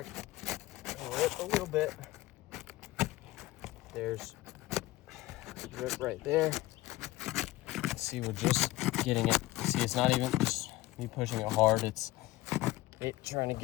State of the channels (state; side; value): quieter; right; 17.9 dB